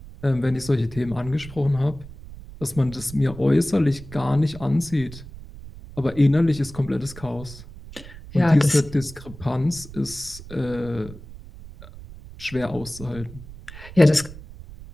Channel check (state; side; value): noise; right; rumble, 16 dB below the sound